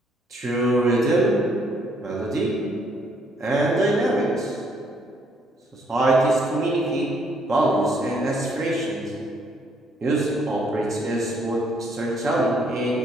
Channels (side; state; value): both; normal; correlation 0.68